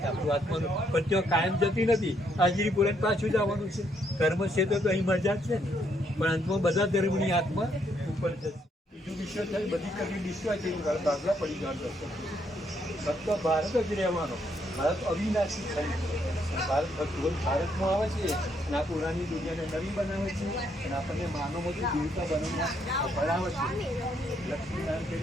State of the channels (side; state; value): both; normal; correlation 0.73